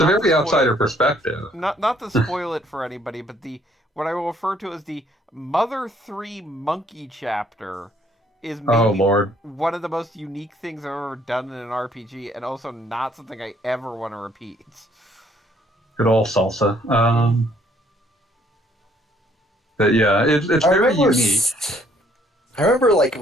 a very outsider perspective. Not to spoil it for anybody, but what I will refer to as the Mother 3 Monkey chapter is maybe Lord. one of the most unique things I've ever done in an RPG, and also not something I ever want to repeat. Good old salsa. But yeah, it's very unique. I remember like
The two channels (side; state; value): both; normal; correlation 0.65